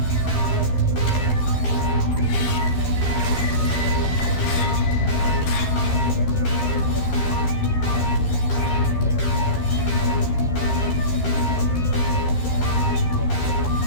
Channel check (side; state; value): right; late; 13 ms